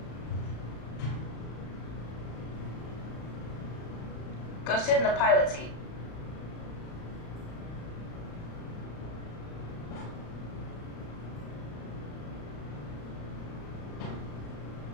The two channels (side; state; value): right; late; 35 ms